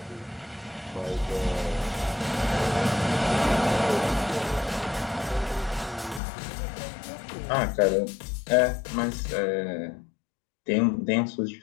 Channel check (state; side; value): drops out; right; at 6.2 s